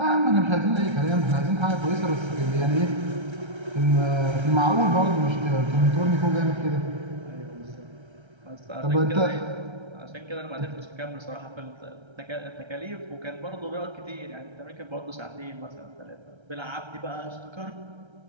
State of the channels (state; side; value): late; left; 1.3 ms